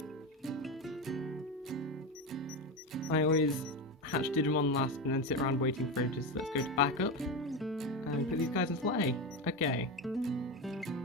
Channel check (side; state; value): both; normal; correlation 0.17